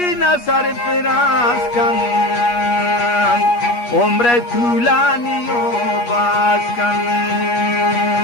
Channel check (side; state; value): right; late; 8.4 ms